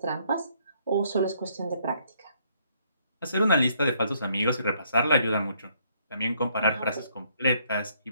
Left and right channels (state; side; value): inverted; both; correlation -0.68